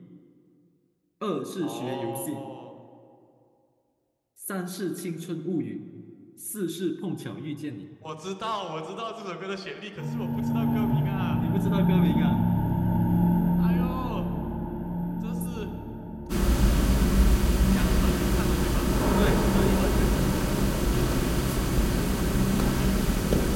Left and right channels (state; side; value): identical; both; correlation 1.00